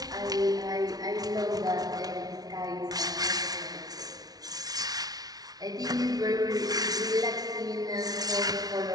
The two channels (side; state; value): left; late; 0.19 ms